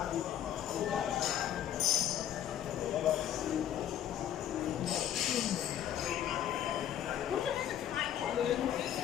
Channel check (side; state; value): right; quieter; 10.7 dB